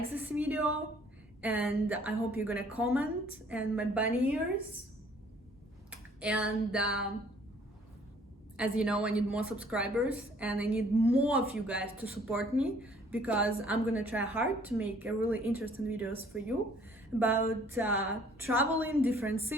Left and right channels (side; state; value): both; normal; correlation 0.58